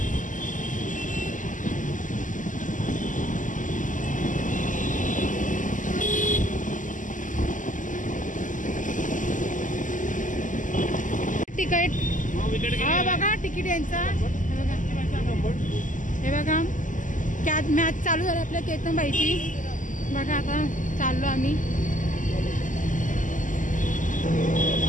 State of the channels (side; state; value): right; late; 0.37 ms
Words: तिकीट हा बघा, तिकीट यांचा हे बघा। कॅच मॅच चालू झाली आपल्या केतनबाईची बघा। आता चाललो आम्ही।